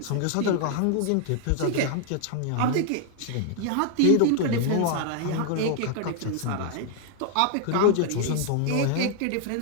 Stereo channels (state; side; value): different; both; correlation 0.00